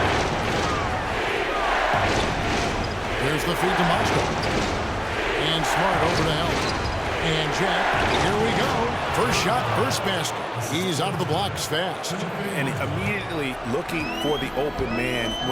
Here's the feed to Mozgov. And Smart over to help. And Jack, here we go. First shot, first basket. He's out of the blocks fast. And immediately looking for the open man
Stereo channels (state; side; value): identical; both; correlation 1.00